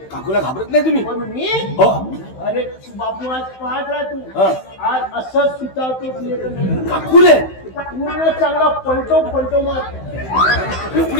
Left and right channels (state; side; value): late; right; 16 ms